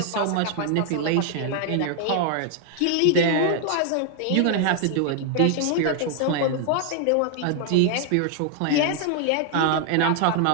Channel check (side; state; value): both; different; correlation 0.00